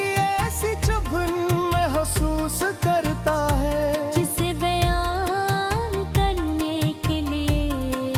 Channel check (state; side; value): identical; both; correlation 1.00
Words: ऐसी चुभन महसूस करता है जिसे बयान करने के लिए